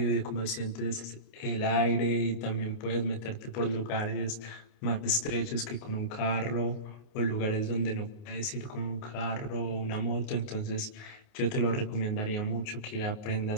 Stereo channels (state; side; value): late; right; 28 ms